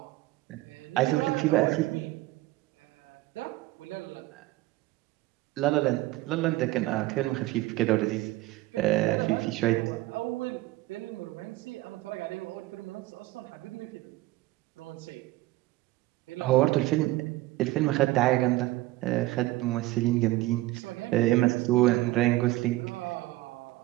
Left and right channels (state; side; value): quieter; left; 17.9 dB